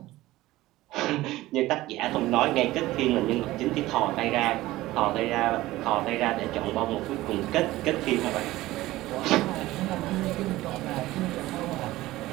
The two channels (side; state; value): left; quieter; 17.3 dB